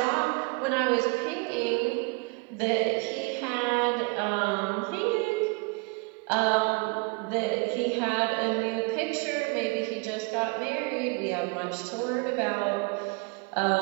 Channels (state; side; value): quieter; left; 31.0 dB